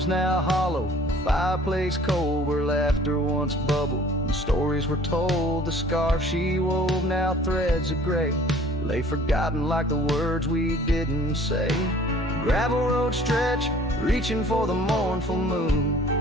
now hollow, the fireplace cold, where laughter once bubbled and stories were told. The scarf she wove, now threads of gray, lay forgotten like the words we didn't say. Gravel road stretch, reaching for the mournful moon.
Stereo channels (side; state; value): both; normal; correlation 0.52